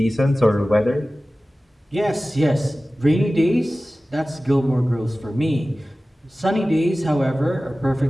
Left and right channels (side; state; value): both; normal; correlation 0.96